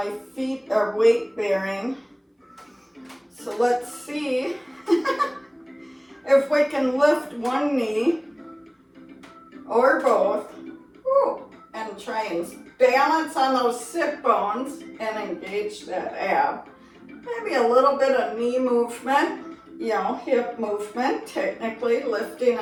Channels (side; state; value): both; identical; correlation 1.00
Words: feet are weight bearing. So let's see if we can lift one knee or both. Woo, and try and balance on those sit bones and engage that ab. Maybe a little bit of knee movement, you know, hip movement, technically lifting